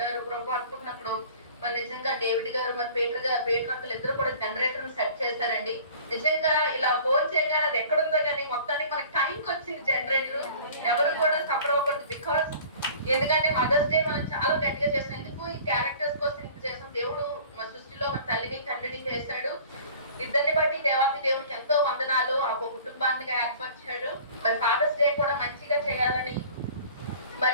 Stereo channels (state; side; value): inverted; both; correlation -0.46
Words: ప్రభు అనుకున్నప్పుడు మరి నిజంగా డేవిడ్ గారు మరి పేటర్ అంకులు ఇద్దరు కూడా జనరేటర్ సెట్ చేశారండి. నిజంగా ఇలా ఫోన్ చేయగానే అది ఎక్కడుందో కానీ మొత్తానికి మనకి టైంకి వచ్చింది జనరేటర్. ఎవరు కూడా సఫర్ అవ్వకూడదు. బికాస్ ఎందుకంటే మదర్స్ డే మనం చాలా గట్టిగా చేసాం. ఎందుకు ఈ క్యారెక్టర్స్ కోసం ఇంత చేసాం. దేవుడు మన సృష్టిలో మన తల్లిని తండ్రిని చేశాడు. ఇద్దరిని బట్టి దేవాతి దేవునికి ఎంతో వందనాలు. ఆ కుటుంబాన్ని ఏర్పరిచాడు. మరి ఫాదర్స్ డే కూడా మంచిగా చేయాలని.